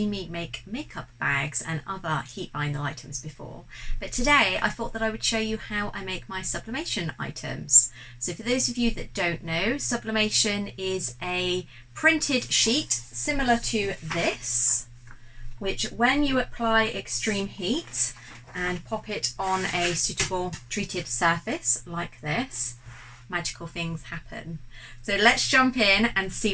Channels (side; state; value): both; identical; correlation 1.00